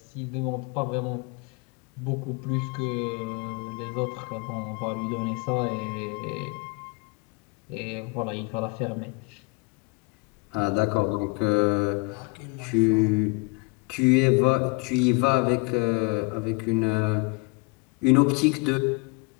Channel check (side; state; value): right; quieter; 29.8 dB